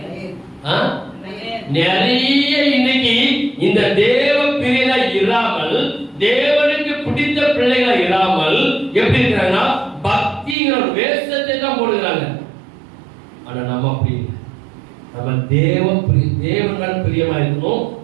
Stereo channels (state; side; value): drops out; left; at 10.6 s